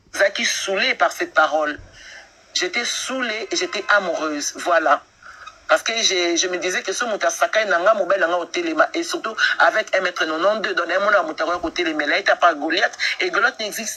zaki saoulé par cette parole. J'étais saoulée et j'étais amoureuse. Voilà. Parce que je me disais que ce Moutasakai nanga mobile nanga au téléma et surtout avec 1m92 dans un monde à Moutaroya au téléma là il t'a pas Goliath et Goliath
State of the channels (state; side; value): identical; both; correlation 1.00